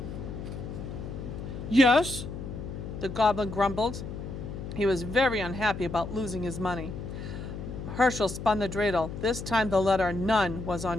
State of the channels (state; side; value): noise; left; hum, 8 dB below the sound